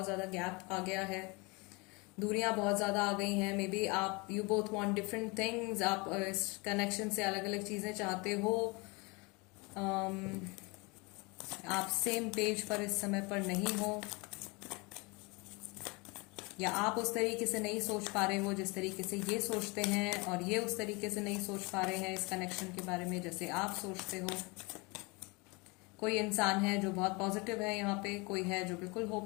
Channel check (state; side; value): quieter; right; 27.4 dB